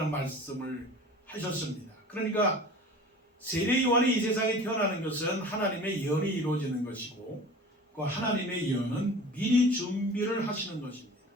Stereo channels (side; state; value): both; normal; correlation 0.40